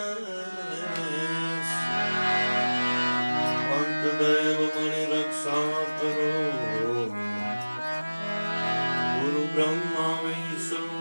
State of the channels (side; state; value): both; inverted; correlation -1.00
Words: अंत देव मणि रक्षा करो गुरु ब्रह्मा